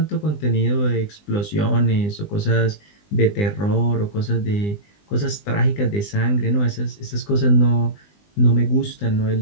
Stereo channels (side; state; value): right; late; 20 ms